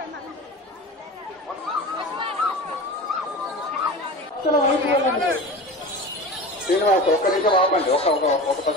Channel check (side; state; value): both; normal; correlation 0.32